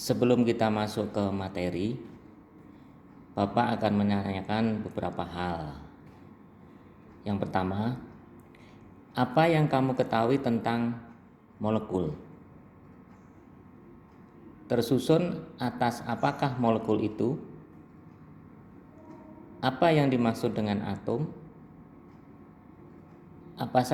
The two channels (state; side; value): identical; both; correlation 1.00